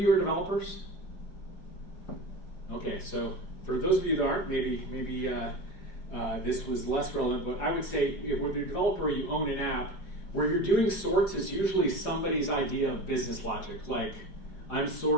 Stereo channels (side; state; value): right; late; 4.9 ms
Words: are developers? Okay, so for those of you that aren't, maybe this was less relevant, but I would say if you're a developer, you own an app, where you're doing sorts is usually somebody's idea of business logic, like I'm